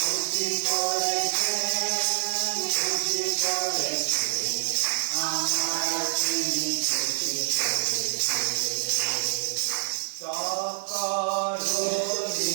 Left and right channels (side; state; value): left; silent; digital silence